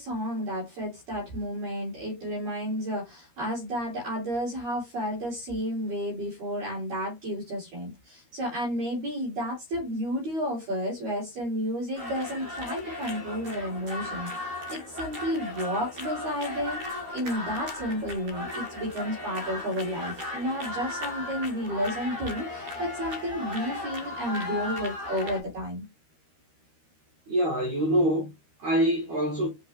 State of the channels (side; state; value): left; late; 13 ms